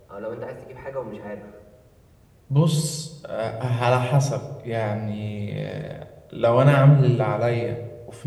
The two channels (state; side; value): identical; both; correlation 1.00